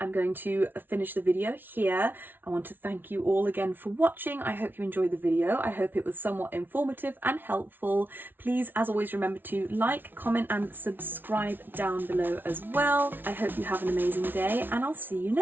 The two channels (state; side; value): late; left; 0.096 ms